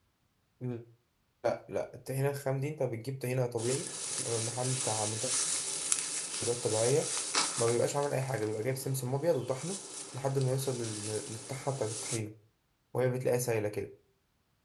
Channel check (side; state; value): both; identical; correlation 1.00